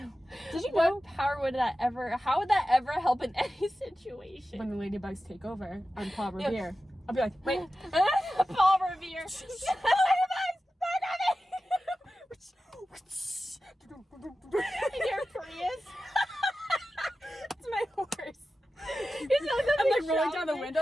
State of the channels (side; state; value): both; normal; correlation 0.93